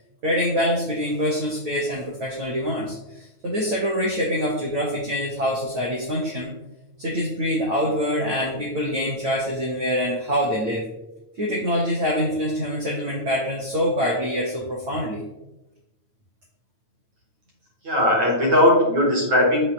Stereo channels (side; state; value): left; late; 9.2 ms